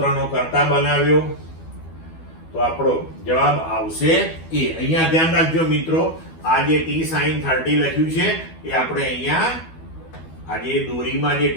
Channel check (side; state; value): right; late; 12 ms